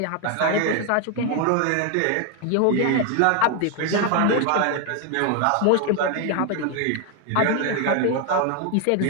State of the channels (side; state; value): both; different; correlation 0.01